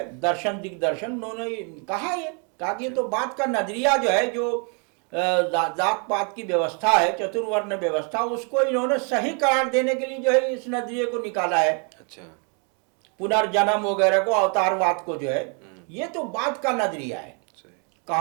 दर्शन दिग्दर्शन, उन्होंने कहा कि ये तो बात का नजरिया जो है, जो जात पात की व्यवस्था है, चतुर्वर्ण व्यवस्था, उसको इन्होंने सही करार देने के लिए जो है इस नजरिए को निकाला है। अच्छा। पुनर्जन्म वगैरह को, अवतारवाद को जो है, ये तो बात का नजरिया है।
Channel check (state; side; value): quieter; left; 37.9 dB